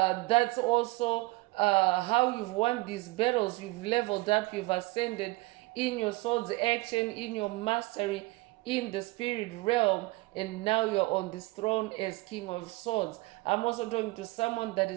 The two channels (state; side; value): quieter; left; 22.4 dB